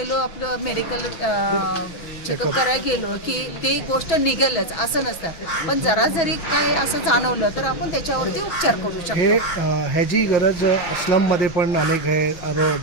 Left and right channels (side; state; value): right; late; 6.0 ms